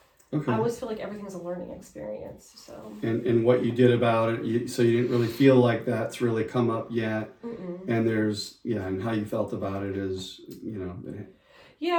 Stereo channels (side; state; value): both; identical; correlation 1.00